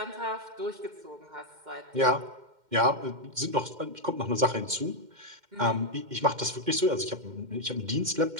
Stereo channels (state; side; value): late; left; 2.1 ms